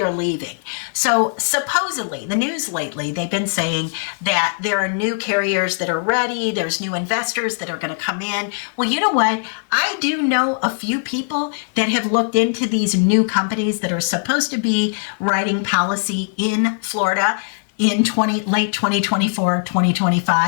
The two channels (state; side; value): silent; right; 65 dB below the other